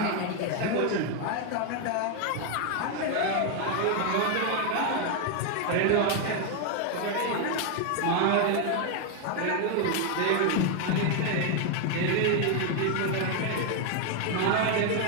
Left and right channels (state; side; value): different; both; correlation 0.01